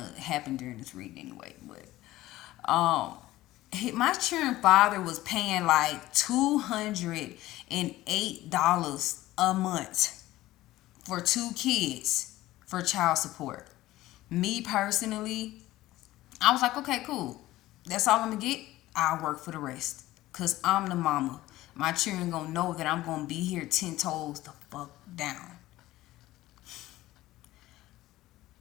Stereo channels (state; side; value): quieter; right; 16.4 dB